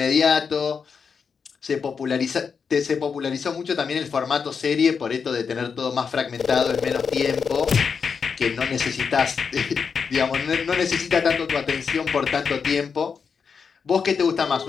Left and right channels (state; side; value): quieter; right; 6.0 dB